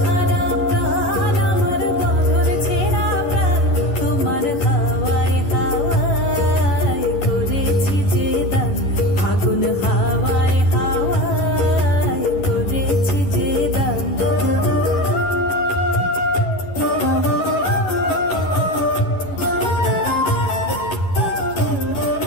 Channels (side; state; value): right; late; 10 ms